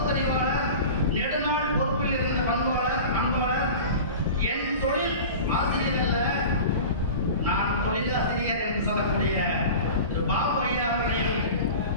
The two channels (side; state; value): both; inverted; correlation -0.35